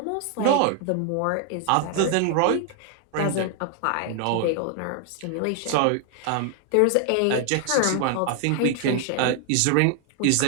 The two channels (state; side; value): different; both; correlation 0.00